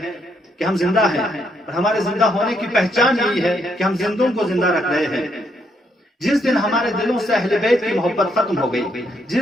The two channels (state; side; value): normal; both; correlation 0.75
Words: کہ ہم زندہ ہیں، اور ہمارے زندہ ہونے کی پہچان یہی ہے کہ ہم زندوں کو زندہ رکھ رہے ہیں۔ جس دن ہمارے دلوں سے اہل بیت کی محبت ختم ہو گئی،